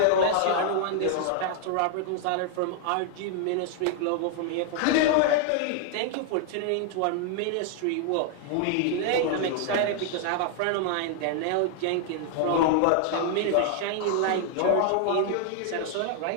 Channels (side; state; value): both; different; correlation 0.00